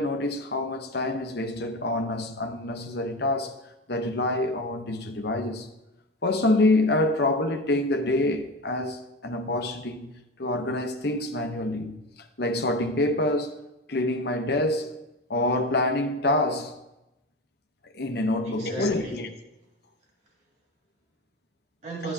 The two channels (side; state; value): both; normal; correlation 0.26